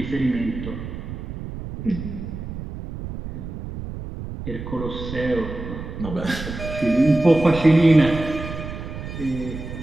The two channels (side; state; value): right; noise; rumble, 8 dB below the sound